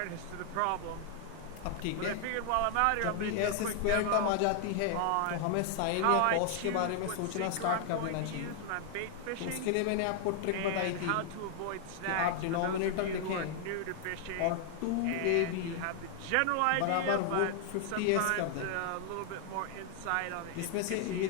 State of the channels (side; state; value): both; different; correlation 0.00